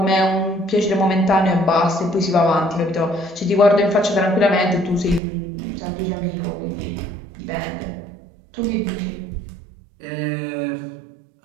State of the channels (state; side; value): drops out; left; at 5.2 s